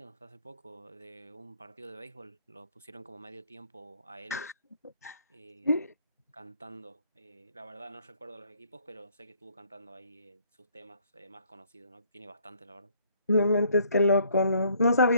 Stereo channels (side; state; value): both; inverted; correlation -0.63